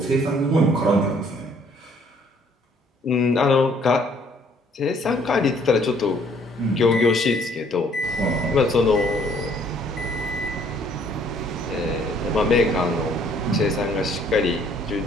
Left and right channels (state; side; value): normal; both; correlation 0.62